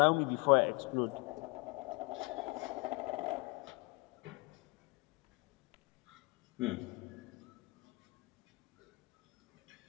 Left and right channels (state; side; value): quieter; right; 27.6 dB